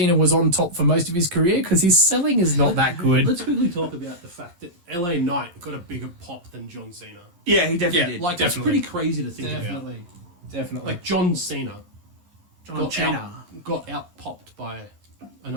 was on top for most of his career, because his selling is not that good. Let's quickly talk about the fact that LA Knight got a bigger pop than John Cena. Yeah, he definitely did. Like, Definitely. that's pretty crazy to think about. Definitely. Like, John Cena John Cena. got out-popped by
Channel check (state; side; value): late; left; 11 ms